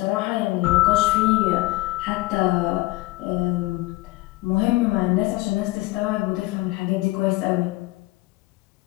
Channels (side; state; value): right; quieter; 19.9 dB